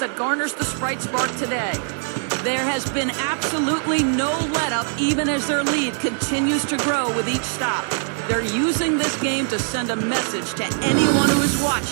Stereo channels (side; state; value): left; silent; 57 dB below the other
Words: that garners the Sprite Spark today. There has been absolutely no let-up, even as their lead continues to grow with each stop. They're using this game to send a message to anyone who is